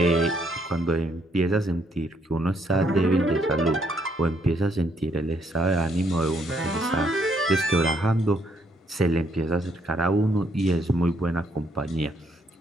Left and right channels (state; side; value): normal; both; correlation 0.71